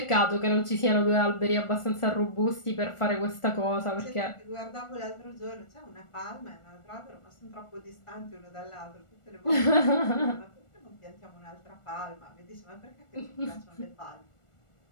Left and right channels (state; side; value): late; right; 1.4 ms